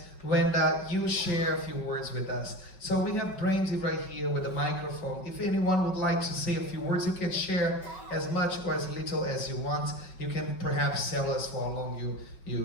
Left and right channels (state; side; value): late; right; 5.4 ms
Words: when you share a few words with us. So we have Brandy right here with the microphone. If anyone would like to say a few words, you can share as much or as little as you want. You can perhaps tell us for how long